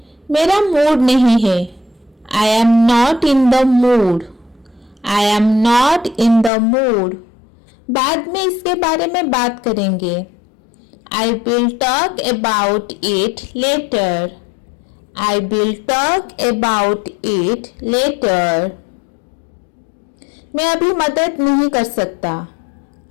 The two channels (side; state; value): right; drops out; at 6.5 s